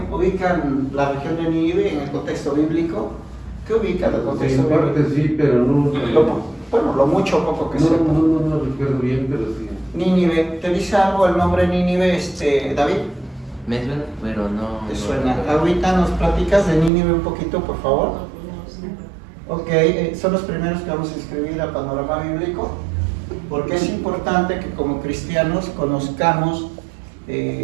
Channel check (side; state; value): left; drops out; at 16.9 s